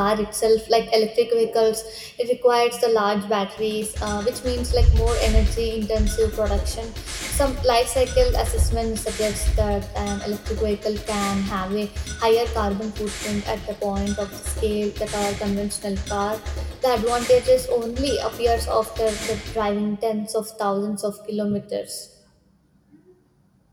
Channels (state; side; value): identical; both; correlation 1.00